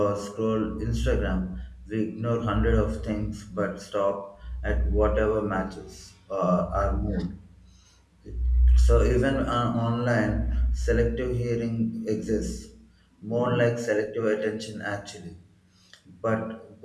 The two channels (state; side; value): identical; both; correlation 1.00